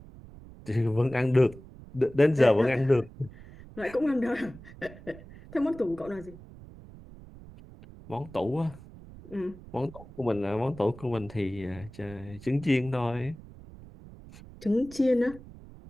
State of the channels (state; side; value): noise; right; rumble, 18 dB below the sound